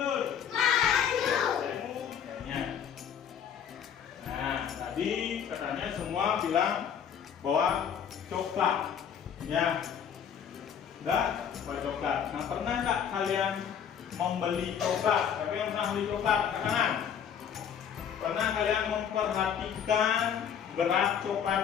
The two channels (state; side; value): quieter; right; 8.2 dB